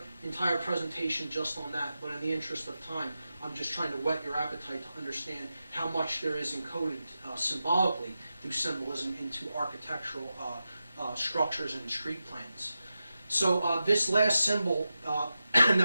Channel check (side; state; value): both; inverted; correlation -0.91